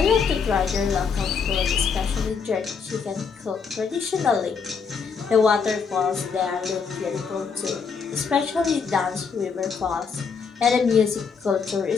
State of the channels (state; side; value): quieter; right; 5.7 dB